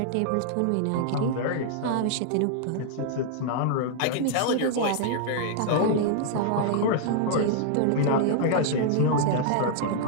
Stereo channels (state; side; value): different; both; correlation -0.01